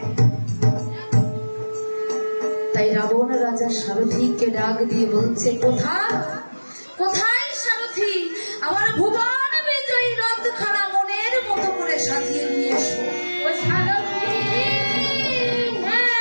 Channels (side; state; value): both; inverted; correlation -1.00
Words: তাই রাবণ রাজা সারথীকে ডাক দিয়ে বলছে, কোথায় কোথায় সারথী, আমার ভুবন বিজয়ী রথখানা মনের মতো করে সাজিয়ে নিয়ে এসো। ও সারথী,